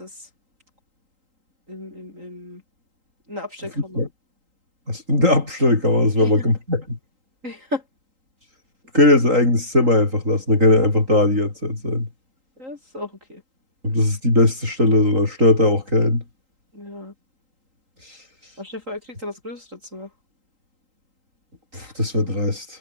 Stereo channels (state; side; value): late; left; 3.8 ms